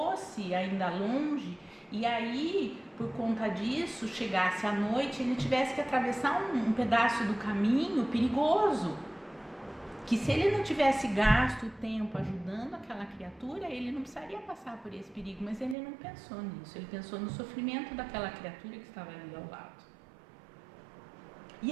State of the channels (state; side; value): drops out; left; at 15.8 s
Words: ainda longe e aí, por conta disso, chegasse à noite e ele tivesse que atravessar um pedaço do caminho perigoso. Que se ele não tivesse gasto o tempo ajudando aquela criatura, ele não precisaria passar por esse perigo, mas ele não pensou nisso, ele pensou no sofrimento daquela criatura que estava ali ao lado. E